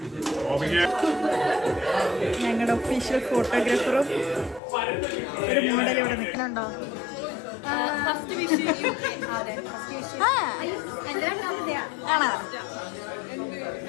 ഞങ്ങളുടെ ഒഫീഷ്യൽ ഫോട്ടോഗ്രാഫറും ഒരു മോഡൽ ഇവിടെ നിൽക്കുന്നുണ്ടോ? ആണോ?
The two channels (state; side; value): drops out; right; at 4.6 s